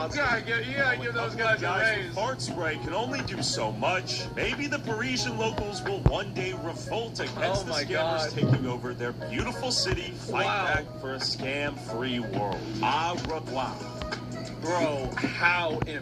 Yeah, give those guys a Guys with raise. fart spray can only do so much. Maybe the Parisian locals will one day revolt against the my scammers God. taking over their beautiful city, fight back for a scam-free world. Au revoir. Bro, how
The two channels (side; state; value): both; identical; correlation 1.00